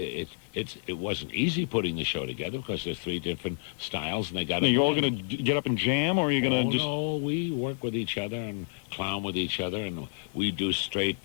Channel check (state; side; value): silent; right; 56 dB below the other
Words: wasn't easy putting the show together because there's three different styles and they got. Now, you're all going to get up and jam, or are you going to just? No, we work with each other and clown with each other, and we do straight